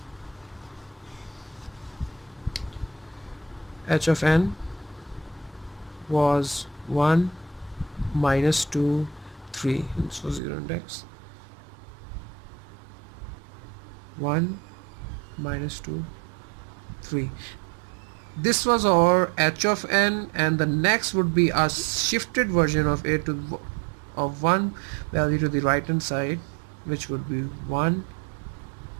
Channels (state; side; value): drops out; left; at 10.4 s